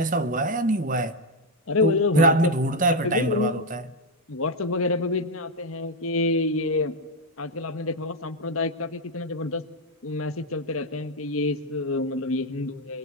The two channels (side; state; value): both; normal; correlation 0.04